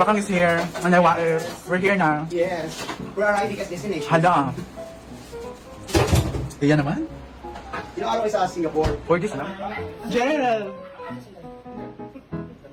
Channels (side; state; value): both; identical; correlation 1.00